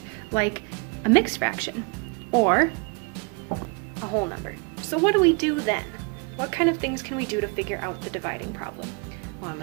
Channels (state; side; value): quieter; left; 31.7 dB